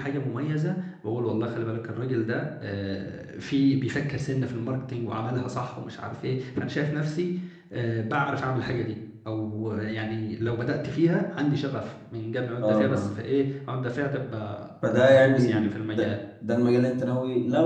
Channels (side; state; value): both; identical; correlation 1.00